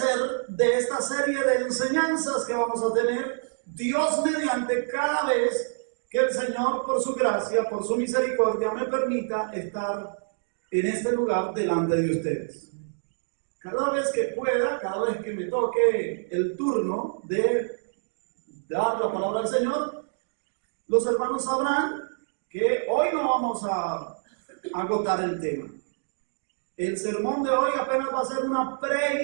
de esta serie de enseñanzas que vamos a tener, Dios mediante, cada vez que el Señor, por su gracia, por su misericordia, me permita estar en este lugar delante de ustedes. Cada vez que pueda, cada vez que me toque el turno de dar la palabra al Señor, los hermanos sabrán que hoy no vamos a agotar el tema. El sermón de hoy apenas va a ser una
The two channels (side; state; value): left; silent; digital silence